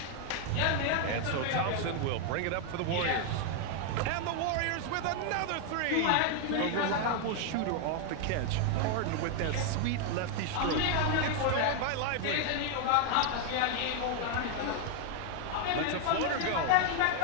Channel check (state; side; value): different; both; correlation 0.00